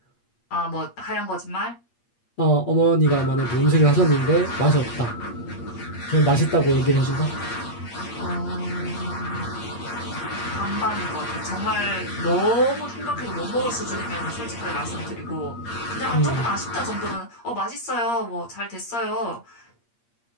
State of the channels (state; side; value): late; right; 8.5 ms